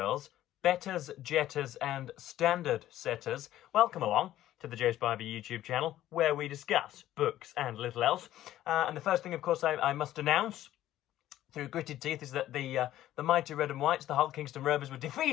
betters, jetters and standard setters, welcome along to the Joe Spivey YouTube channel where we discuss books and little else. And the first thing, of course, I must announce through gritted teeth is that the mighty Red and Whites, the Hull Kingston Rovers, were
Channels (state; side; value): quieter; right; 13.4 dB